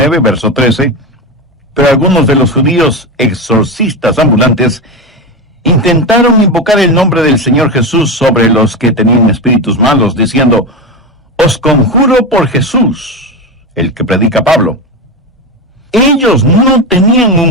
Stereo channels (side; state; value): both; normal; correlation 0.17